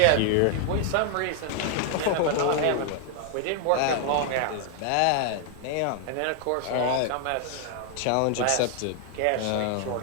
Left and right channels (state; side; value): different; both; correlation 0.00